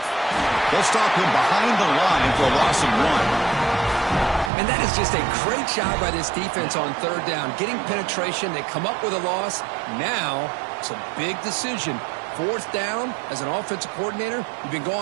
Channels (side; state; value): left; drops out; at 4.5 s